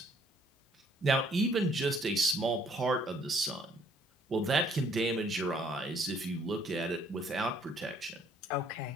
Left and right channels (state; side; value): normal; both; correlation 0.63